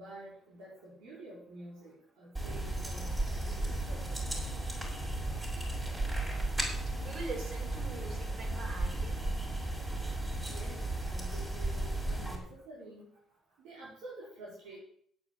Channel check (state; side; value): normal; both; correlation 0.84